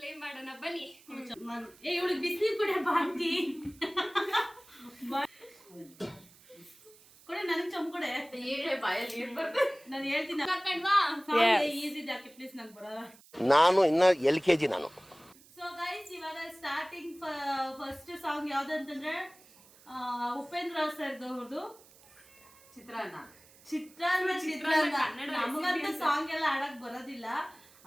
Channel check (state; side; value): noise; right; hiss, 25 dB below the sound